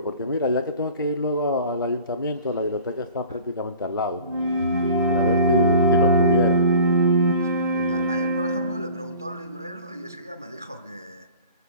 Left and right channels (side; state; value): both; inverted; correlation -0.44